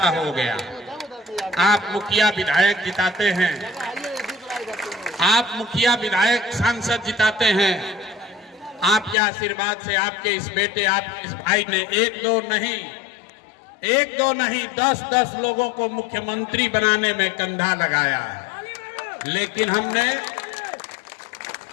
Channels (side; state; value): right; drops out; at 9.2 s